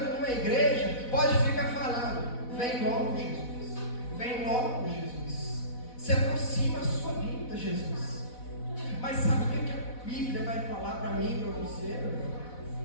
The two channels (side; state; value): right; late; 4.1 ms